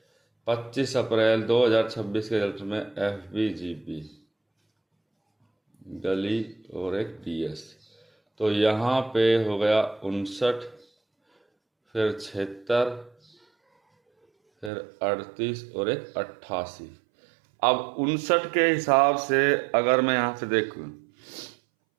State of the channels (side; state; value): left; drops out; at 14.7 s